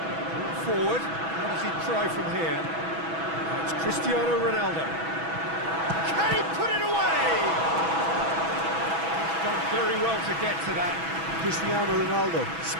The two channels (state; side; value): late; left; 6.1 ms